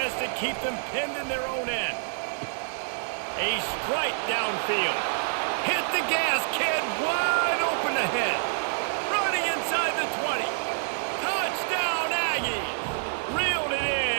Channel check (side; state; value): left; silent; digital silence